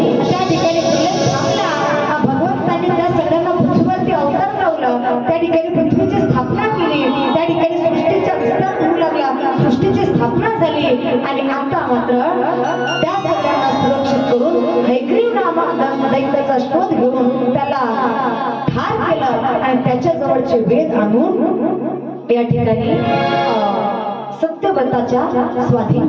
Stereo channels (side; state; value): both; identical; correlation 1.00